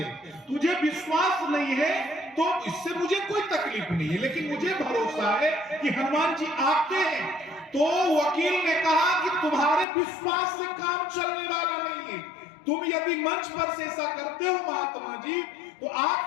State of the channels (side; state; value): right; drops out; at 9.9 s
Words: तुझे विश्वास नहीं है तो इससे मुझे कोई तकलीफ नहीं है, लेकिन मुझे भरोसा है कि हनुमान जी आते हैं। तो वकील ने कहा कि तुम्हारे विश्वास से काम चलने वाला नहीं है। तुम यदि मंच पर से ऐसा करते हो महात्मा जी, तो